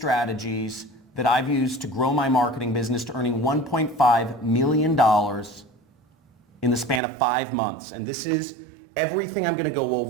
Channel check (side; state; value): left; drops out; at 7.0 s